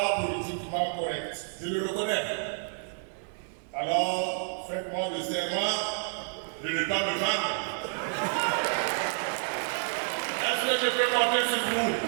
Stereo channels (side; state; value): left; silent; 57 dB below the other